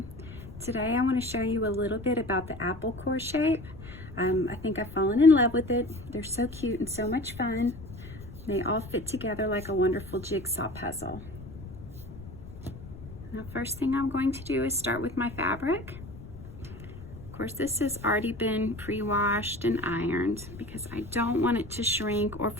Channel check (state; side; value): noise; left; rumble, 14 dB below the sound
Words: Today I want to show you a little bit about the apple core shape. I think I've fallen in love with it. They're so cute and so much fun. They all fit together like a wonderful jigsaw puzzle. Now, first thing I'm going to do is start with my fabric. Of course, this has already been pre-washed and ironed because I don't want it to shrink or